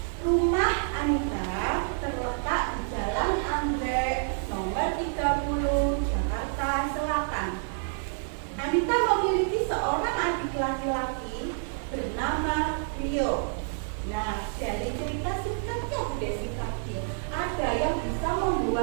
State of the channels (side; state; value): left; silent; 58 dB below the other